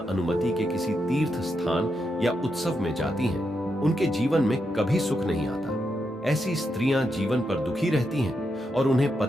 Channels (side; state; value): both; normal; correlation 0.84